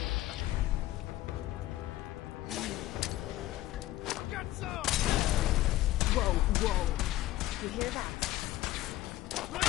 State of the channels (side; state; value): right; quieter; 15.5 dB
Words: Get some! Whoa, whoa. You hear that?